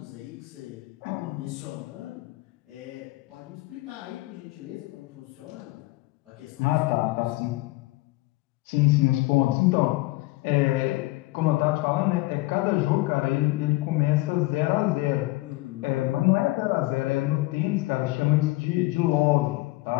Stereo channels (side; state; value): right; quieter; 20.4 dB